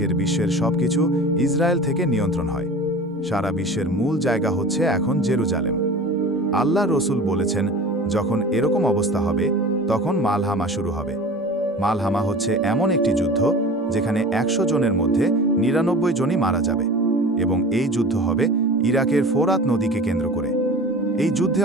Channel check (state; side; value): normal; both; correlation 0.38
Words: বিশ্বের সবকিছু ইসরায়েল থেকে নিয়ন্ত্রণ হয়। সারা বিশ্বের মূল জায়গা হচ্ছে এখন জেরুজালেম। আল্লাহ রসুল বলেছেন, যখন এরকম অবস্থা হবে তখন মালহামা শুরু হবে। মালহামা হচ্ছে এমন একটি যুদ্ধ যেখানে 100 জনের মধ্যে 99 জনই মারা যাবে, এবং এই যুদ্ধ হবে ইরাকের ফোরাত নদীকে কেন্দ্র করে। এই যুদ্ধে